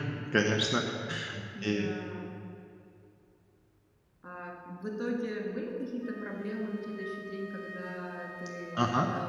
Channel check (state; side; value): identical; both; correlation 1.00